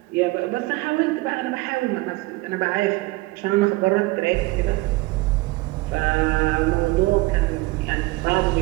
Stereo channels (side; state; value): left; quieter; 21.4 dB